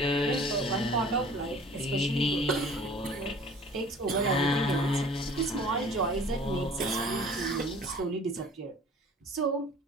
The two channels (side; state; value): both; normal; correlation 0.48